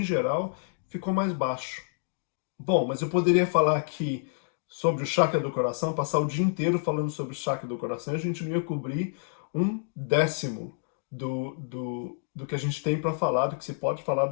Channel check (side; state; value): right; silent; digital silence